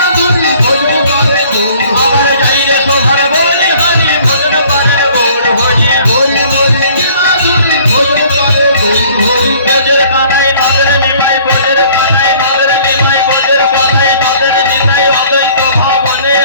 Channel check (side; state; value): both; inverted; correlation -0.54